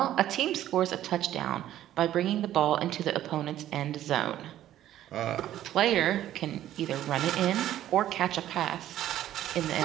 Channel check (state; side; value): quieter; left; 12.6 dB